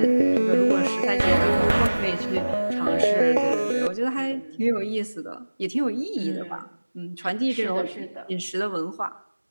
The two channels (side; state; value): both; inverted; correlation -1.00